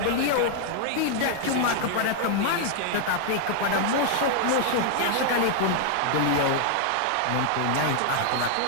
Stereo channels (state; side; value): different; both; correlation 0.00